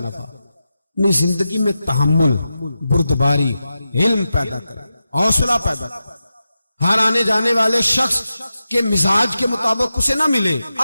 अपनी जिंदगी में तहम्मुल, बुर्दबारी, इल्म पैदा करे, हौसला पैदा करे। हर आने जाने वाले शख्स के मिजाज के मुताबिक उसे ना मिले,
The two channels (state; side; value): inverted; both; correlation -0.91